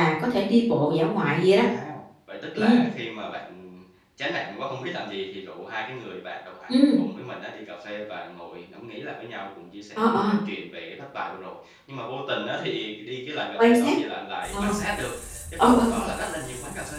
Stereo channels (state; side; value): identical; both; correlation 1.00